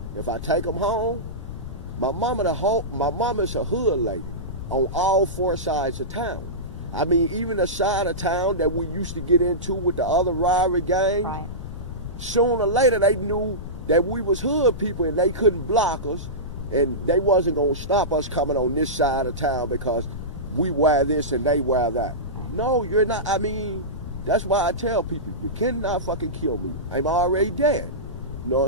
if I take them home, my mama's a hood lady on all 4 sides of town. I mean, even the side of town that we used to get into with the other rivalry gangs, right. Sooner or later they knew that we was hood people and they couldn't block us, and they wasn't going to stop us coming on this side of town because we wear this and they wear that. No, you're not. I mean, that's why I tell people, you cannot fucking kill me. I'm already dead. You know what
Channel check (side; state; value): left; noise; rumble, 9 dB below the sound